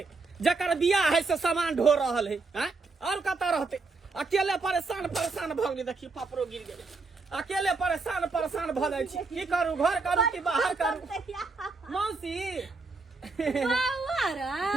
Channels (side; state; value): left; quieter; 3.9 dB